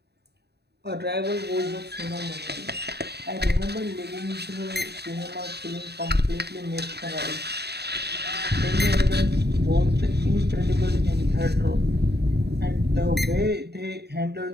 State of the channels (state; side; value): late; left; 0.48 ms